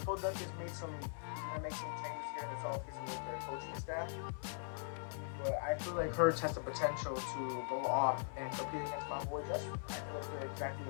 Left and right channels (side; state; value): right; silent; 50 dB below the other